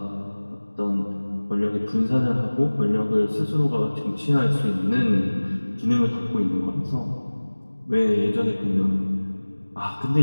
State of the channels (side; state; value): both; inverted; correlation -1.00